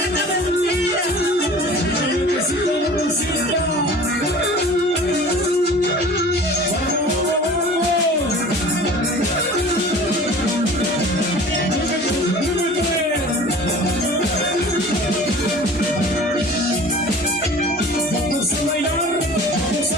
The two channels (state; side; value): normal; both; correlation 0.43